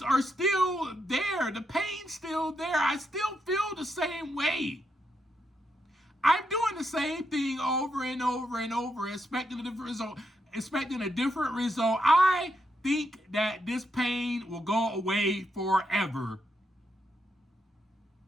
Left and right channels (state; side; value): normal; both; correlation 0.81